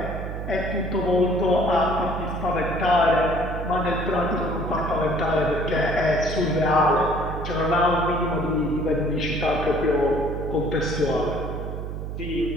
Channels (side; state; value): right; noise; hum, 6 dB below the sound